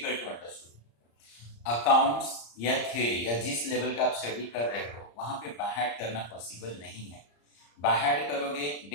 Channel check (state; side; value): late; right; 34 ms